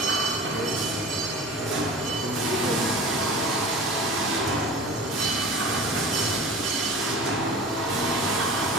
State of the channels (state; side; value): normal; both; correlation 0.37